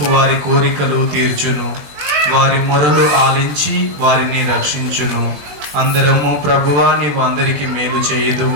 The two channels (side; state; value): left; late; 20 ms